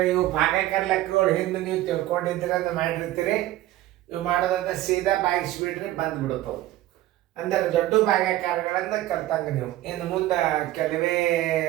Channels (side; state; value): left; quieter; 15.1 dB